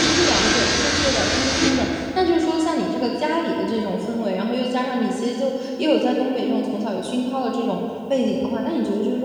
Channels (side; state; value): both; identical; correlation 1.00